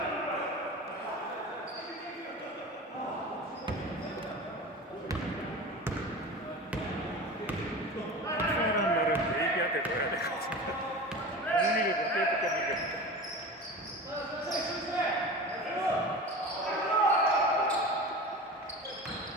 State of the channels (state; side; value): normal; both; correlation 0.32